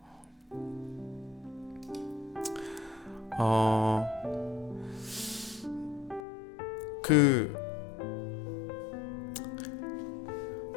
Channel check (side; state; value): right; drops out; at 6.2 s